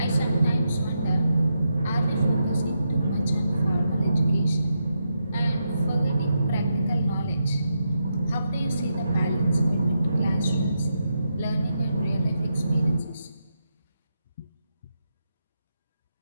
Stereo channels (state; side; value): inverted; both; correlation -0.84